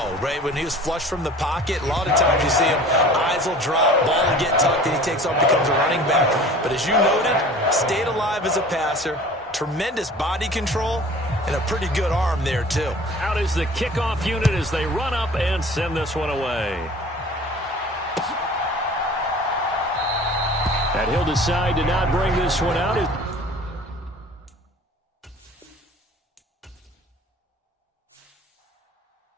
right? When he was flushed from the pocket, a lot of times you see him, eyes will drop, ball will get tucked, and he takes off, becomes a running back. But as you noted, stayed alive as a passer, tremendous body control, and a pretty good arm there, too. Out is the kickoff unit as they run up and send this one away. And he'll decide to not bring this one out.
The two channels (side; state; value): both; normal; correlation 0.45